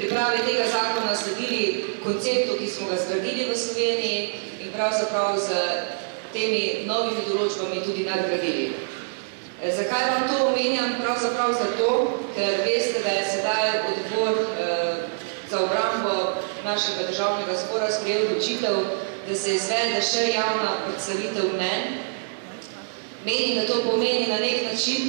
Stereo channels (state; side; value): silent; left; digital silence